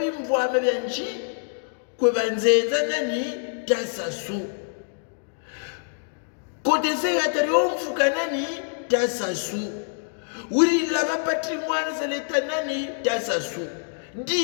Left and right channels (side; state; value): right; silent; digital silence